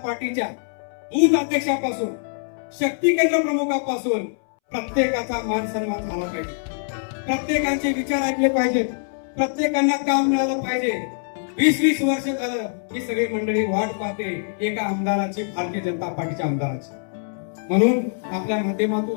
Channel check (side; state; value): right; silent; 63 dB below the other